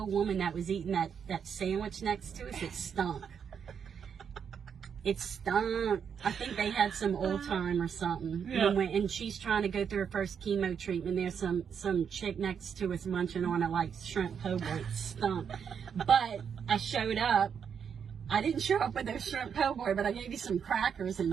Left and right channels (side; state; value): left; quieter; 7.3 dB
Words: woman that was eating that sandwich next to us, it stunk. It stunk. I think they had some old time or something. Yeah. And she's trying to go through her first chemo treatment. There's some chick next to us munching on it like shrimp po' boy. It stunk. But I showed up. I didn't show up with those shrimp po' boy, but I gave you some crackers